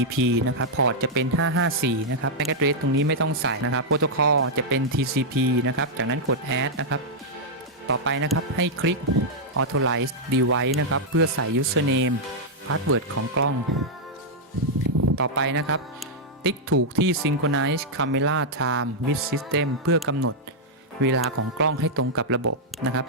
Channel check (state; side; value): normal; both; correlation -0.06